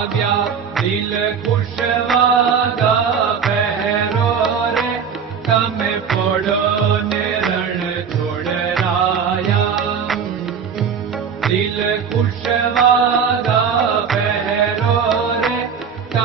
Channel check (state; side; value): quieter; left; 6.8 dB